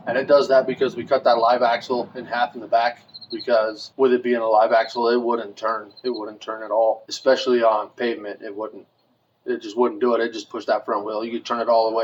And it does that because we cut that live axle in half in the back, because with it being a live axle, it wouldn't turn. It wouldn't turn at all, especially on pavement. It just wouldn't do it. It just pushed that front wheel. You could turn it all the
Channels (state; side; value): identical; both; correlation 1.00